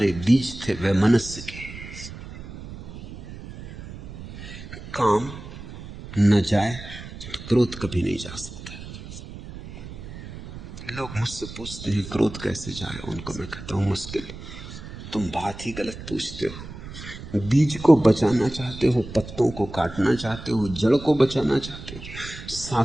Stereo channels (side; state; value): right; noise; rumble, 12 dB below the sound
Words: बीज थे वैमनस्य के। काम न जाए तो क्रोध कभी नहीं जा सकता। लोग मुझसे पूछते हैं क्रोध कैसे जाए, उनको मैं कहता हूं मुश्किल। तुम बात ही गलत पूछते हो। बीज को बचाना चाहते हो, पत्तों को काटना चाहते हो, जड़ को बचाना चाहते हो,